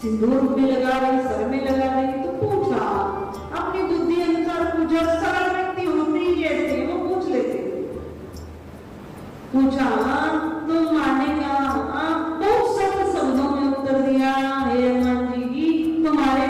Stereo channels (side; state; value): both; identical; correlation 1.00